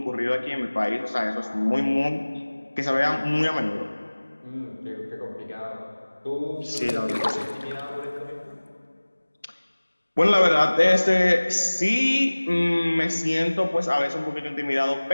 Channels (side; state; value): both; inverted; correlation -1.00